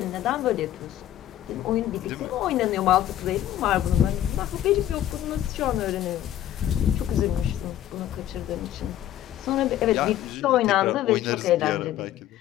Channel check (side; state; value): right; quieter; 12.4 dB